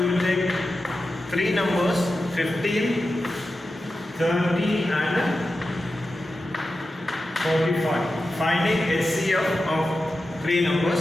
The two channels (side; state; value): both; normal; correlation 0.91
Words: will take three numbers 15, 30 and 45. Finding HCF of three